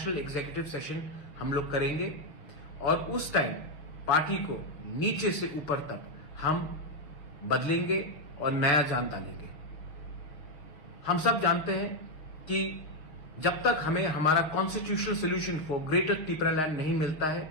executive session हम लोग करेंगे और उस टाइम पार्टी को नीचे से ऊपर तक हम बदलेंगे और नया जान डालेंगे। हम सब जानते हैं कि जब तक हमें हमारा constitutional solution for greater Tipra land नहीं मिलता है,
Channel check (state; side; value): late; right; 6.5 ms